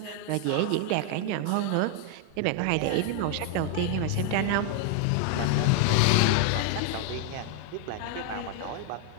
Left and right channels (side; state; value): both; different; correlation 0.00